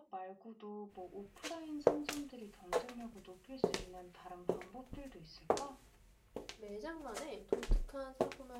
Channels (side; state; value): both; identical; correlation 1.00